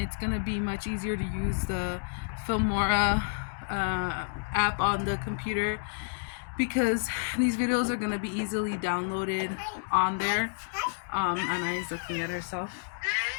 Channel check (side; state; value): right; silent; digital silence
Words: gonna be much easier to use the Filmora app on the computer, because these videos are gonna be easily downloaded on there. Anna's looking at herself.